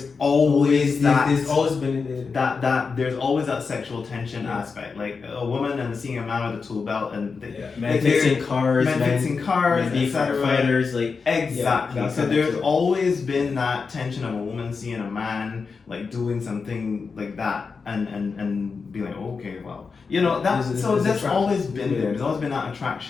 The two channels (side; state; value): right; quieter; 5.0 dB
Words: always there's always been there's always that sexual tension aspect, like a woman and seeing a man with a tool belt, and men fixing cars, men being firefighters, like exactly. So there's always been that tension of a woman seeing a man like doing something like that, and being like, okay, well, that's always been there. There's always been that